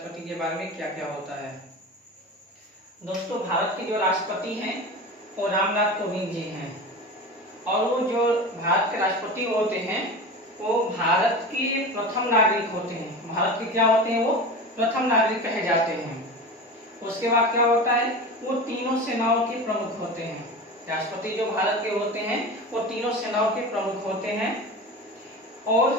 के बारे में क्या क्या होता है। दोस्तों, भारत के जो राष्ट्रपति हैं वो रामनाथ कोविंद जी हैं और वो जो भारत के राष्ट्रपति होते हैं वो भारत के प्रथम नागरिक होते हैं। भारत के क्या होते हैं? वो प्रथम नागरिक कहे जाते हैं। उसके बाद क्या होता है? वो तीनों सेनाओं के प्रमुख होते हैं। राष्ट्रपति जो भारत के होते हैं वो तीनों सेनाओं के प्रमुख होते हैं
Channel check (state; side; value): normal; both; correlation 0.30